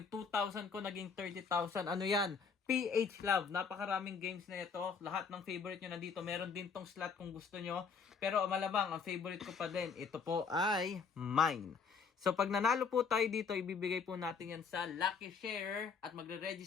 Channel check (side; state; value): right; quieter; 5.7 dB